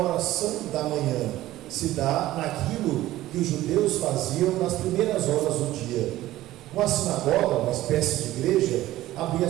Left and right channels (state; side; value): quieter; left; 15.5 dB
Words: da manhã, se dá naquilo que os judeus faziam nas primeiras horas do dia. Uma sinagoga, uma espécie de igreja, abria